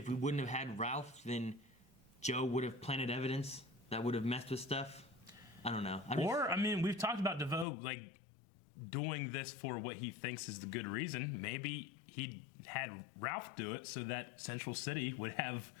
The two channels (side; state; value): right; drops out; at 7.7 s